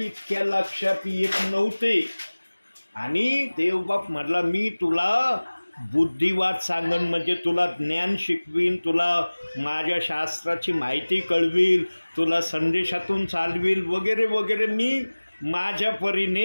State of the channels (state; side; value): inverted; both; correlation -1.00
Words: लक्षात येत नव्हते. आणि देवबाप म्हटला, मी तुला बुद्धिवाद सांगन, म्हणजे तुला ज्ञान शिकवीन, तुला माझ्या शास्त्राची माहिती कळवील, तुला संदेशातून चालवील वगैरे वगैरे. मी माझ्या